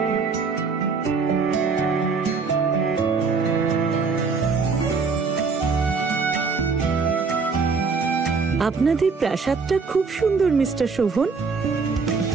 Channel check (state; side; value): quieter; left; 4.8 dB